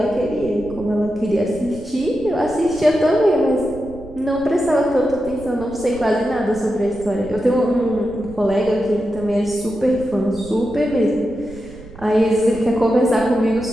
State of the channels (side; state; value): right; noise; rumble, 18 dB below the sound